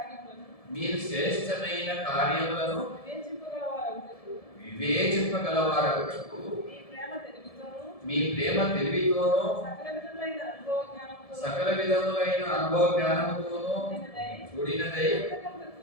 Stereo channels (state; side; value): late; right; 1.7 ms